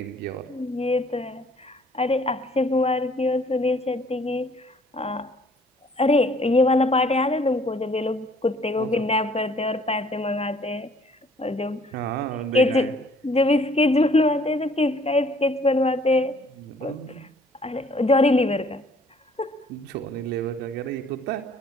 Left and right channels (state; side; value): normal; both; correlation 0.58